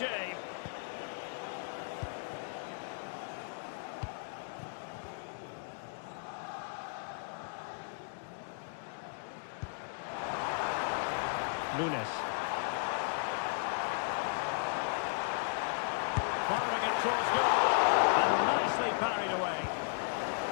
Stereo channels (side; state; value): right; silent; digital silence